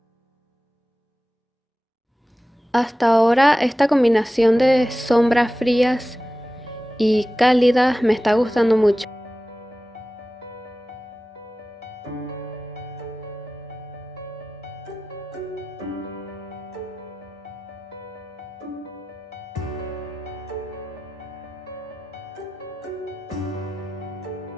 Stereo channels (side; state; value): both; normal; correlation 0.95